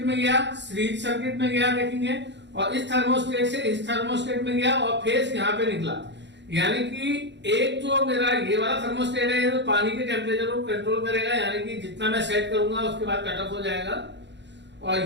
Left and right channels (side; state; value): left; late; 0.52 ms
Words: में गया, सीरीज सर्किट में गया देखेंगे, और इस थर्मोस्टेट से इस थर्मोस्टेट में गया और फेज यहाँ पे निकला। यानी कि एक जो मेरा ये वाला थर्मोस्टेट है ये तो पानी के टेम्परेचर को कंट्रोल करेगा, यानी कि जितना मैं सेट करूंगा उसके बाद कट ऑफ हो जाएगा।